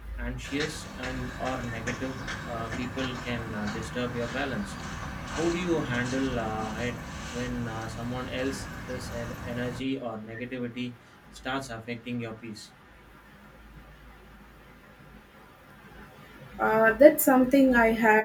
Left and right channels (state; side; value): identical; both; correlation 1.00